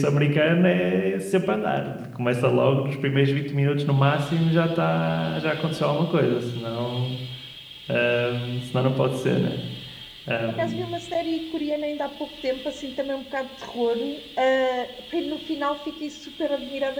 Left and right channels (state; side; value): identical; both; correlation 1.00